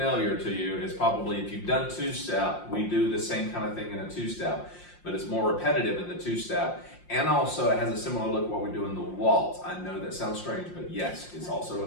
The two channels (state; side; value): late; right; 5.7 ms